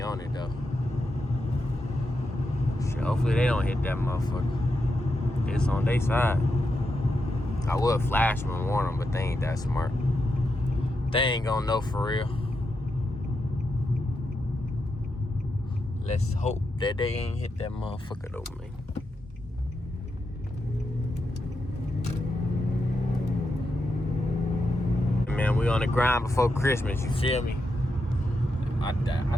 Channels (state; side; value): normal; both; correlation 0.85